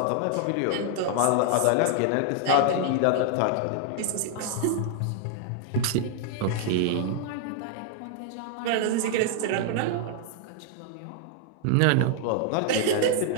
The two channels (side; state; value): both; different; correlation 0.00